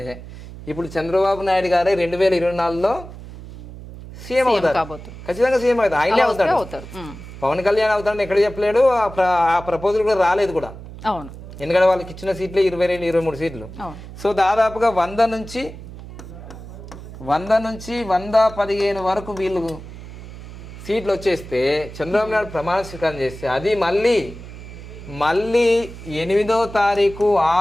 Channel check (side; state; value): right; noise; hum, 14 dB below the sound